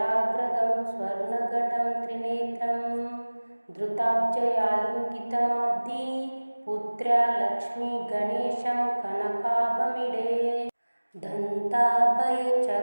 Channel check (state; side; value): inverted; both; correlation -1.00